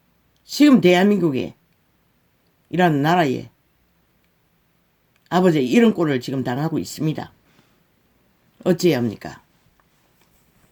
지금 대한민국에 이라는 나라에 아버지 이런 꼴을 지금 당하고 있습니다. 어찌해야 합니까?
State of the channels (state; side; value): identical; both; correlation 1.00